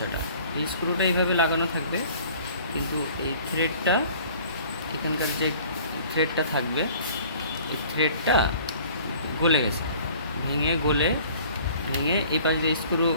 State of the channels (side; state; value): both; inverted; correlation -0.50